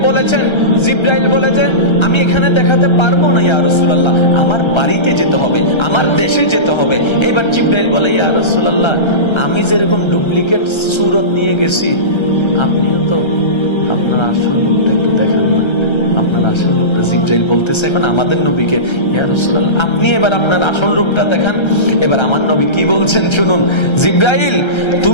বলেছেন, জিব্রাইল বলেছেন, আমি এখানে দেখাতে পারবো না ইয়া রাসূলুল্লাহ, আমার বাড়িতে যেতে হবে, আমার দেশে যেতে হবে। এবার জিব্রাইল বলে, ইয়া রাসূলুল্লাহ, আমি যেরকম ডুপ্লিকেট সুরত নিয়ে গেছি, আপনিও তো আপনার আসল রূপটা একটু দেখান না, আপনার আসল রূপটা। জিব্রাইল বলতেছে এখন আমাদের নবীকে, ইয়া রাসূলুল্লাহ, আপনি এবার আপনার আসল রূপটা দেখান। এবার আমার নবী কি বলছেন শুনুন, জিব্রাইল,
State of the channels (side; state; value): right; late; 1.3 ms